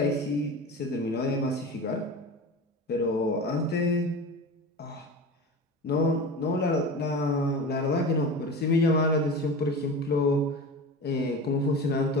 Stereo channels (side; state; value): both; normal; correlation 0.30